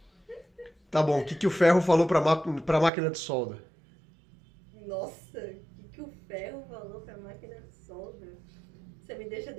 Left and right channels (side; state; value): left; drops out; at 2.9 s